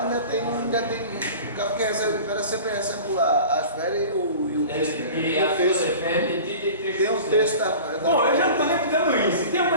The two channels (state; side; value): inverted; both; correlation -0.39